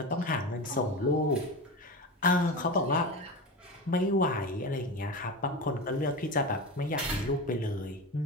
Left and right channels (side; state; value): both; normal; correlation 0.24